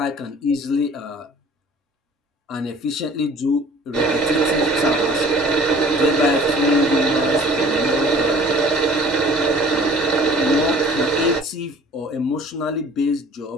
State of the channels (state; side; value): normal; both; correlation 0.50